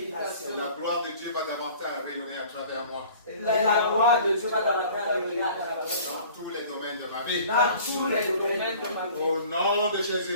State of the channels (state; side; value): inverted; both; correlation -0.48